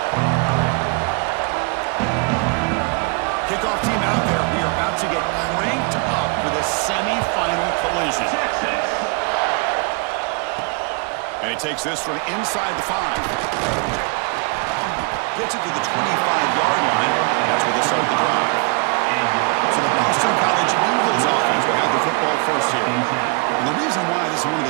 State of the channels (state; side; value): quieter; left; 34.3 dB